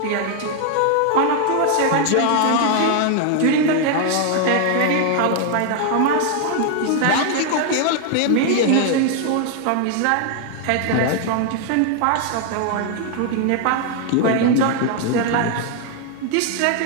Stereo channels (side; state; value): both; different; correlation 0.00